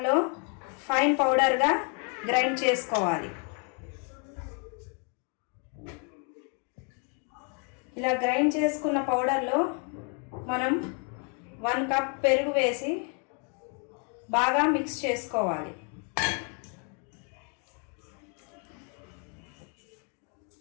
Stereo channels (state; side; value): quieter; right; 38.8 dB